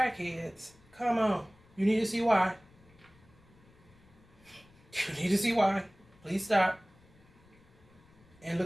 come on. You need to see why. You need to see why. Please stop and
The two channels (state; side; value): noise; left; rumble, 28 dB below the sound